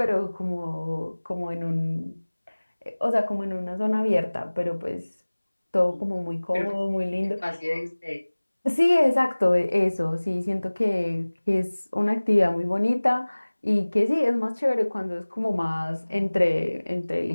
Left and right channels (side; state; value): both; inverted; correlation -1.00